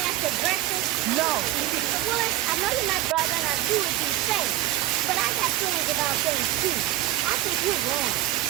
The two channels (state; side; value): quieter; left; 15.3 dB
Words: after breakfast? No. Willis, I know you're my brother and I do what you say. But I got feelings about things too. I think you're wrong.